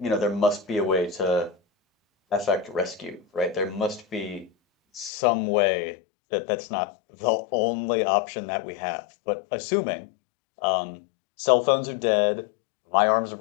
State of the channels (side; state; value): right; drops out; at 5.1 s